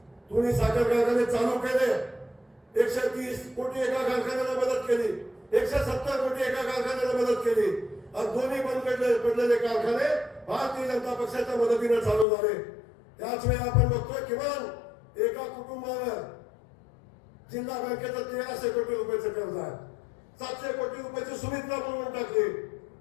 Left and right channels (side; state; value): right; drops out; at 12.2 s